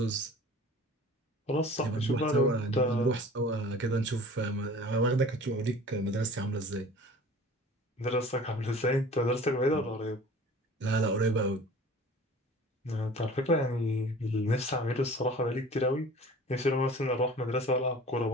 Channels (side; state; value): both; normal; correlation 0.44